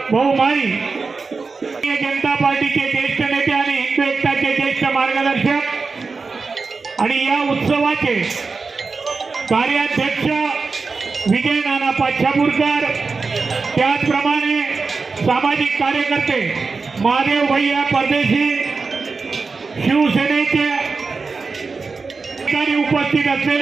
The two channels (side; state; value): left; quieter; 4.4 dB